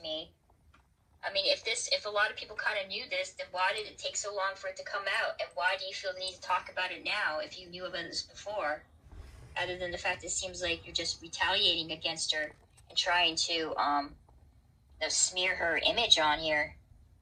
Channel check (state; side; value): identical; both; correlation 1.00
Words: I mean, if a lot of people kind of knew this, then why did it take so long for it to come out? And why do you feel the need to talk about it now if you knew about this before? Other than the fact it seems like you're just retaliating against her and trying to smear her image on here.